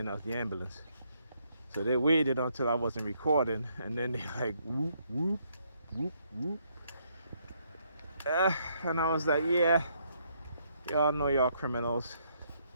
now is the ambulance. So they waited until I wasn't recording, and then they like whoop whoop whoop whoop. And I was like, yeah, y'all know y'all criminals.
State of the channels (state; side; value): inverted; both; correlation -0.72